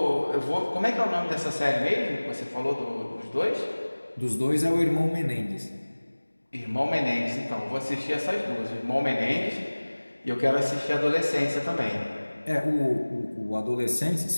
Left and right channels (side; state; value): both; inverted; correlation -1.00